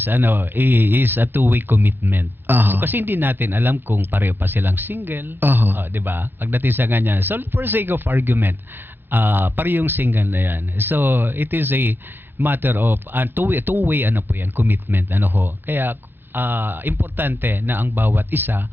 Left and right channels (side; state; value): left; late; 0.10 ms